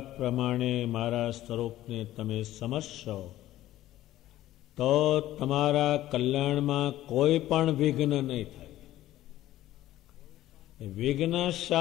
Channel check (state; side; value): quieter; right; 14.5 dB